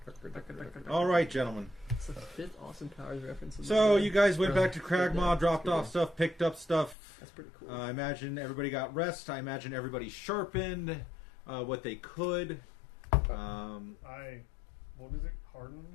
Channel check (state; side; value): drops out; right; at 7.0 s